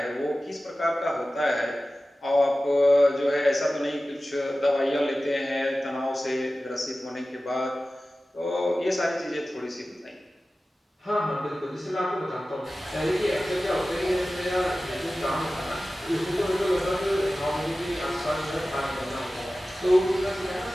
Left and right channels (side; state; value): both; normal; correlation 0.95